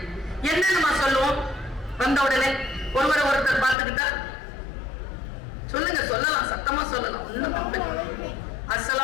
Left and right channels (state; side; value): drops out; right; at 3.8 s